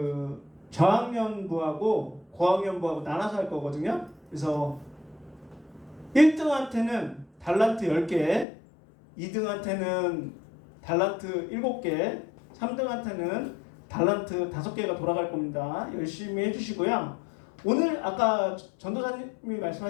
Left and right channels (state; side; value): drops out; right; at 8.5 s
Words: 저학년부하고 고학년부하고 나눠서 할 거거든요. 그래서 1등한테는 달란트 10개, 2등한테는 달란트 7개, 3등한테는 달란트 5개가 돌아갈 겁니다. 열심히 해주시고요. 오늘 아까 전도사님이